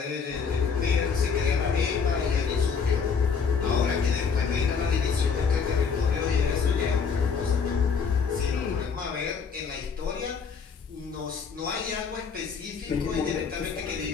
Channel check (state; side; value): quieter; right; 5.9 dB